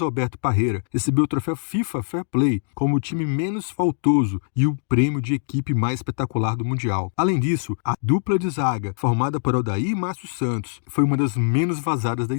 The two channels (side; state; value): right; silent; digital silence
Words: Parreira, recebeu o troféu FIFA Fair Play como o time menos faltoso e o prêmio de equipe mais espetacular do Mundial. Além disso, a dupla de zaga, formada por Aldair e Márcio Santos, foi uma das menos vazadas da